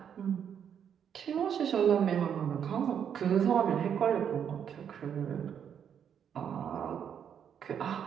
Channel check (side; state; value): left; quieter; 8.3 dB